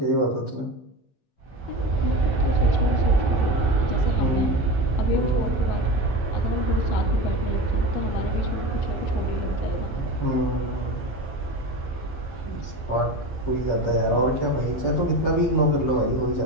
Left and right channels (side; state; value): right; late; 15 ms